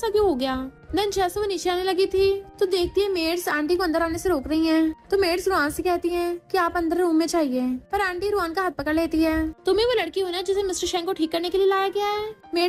क्यों हो गया। देन जैसे वो नीचे आने लगी थी तो देखती है मेड्स आंटी को अंदर आने से रोक रही हैं। तो मेड्स रुआन से कहती हैं कि आप अंदर रूम में चाहिए पर आंटी रुआन का हाथ पकड़ लेती है। तुम्हें वो लड़की हो ना जिसे मिस्टर शेंग को ठीक करने के लिए लाया गया है।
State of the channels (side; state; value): both; identical; correlation 1.00